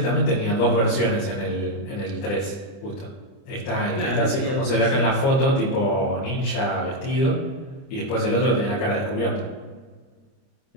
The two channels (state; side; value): late; right; 30 ms